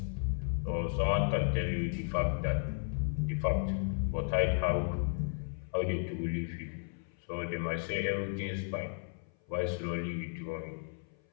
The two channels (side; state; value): right; silent; 55 dB below the other